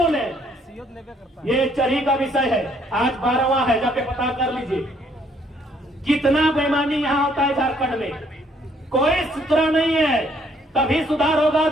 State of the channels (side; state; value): both; normal; correlation 0.66